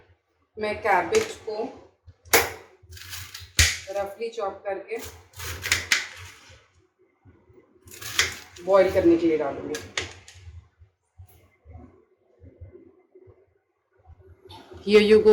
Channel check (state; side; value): identical; both; correlation 1.00